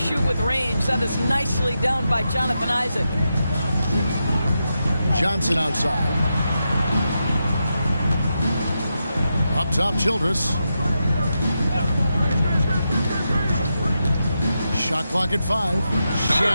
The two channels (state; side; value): inverted; both; correlation -0.87